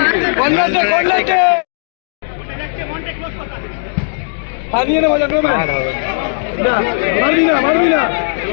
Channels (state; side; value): silent; right; digital silence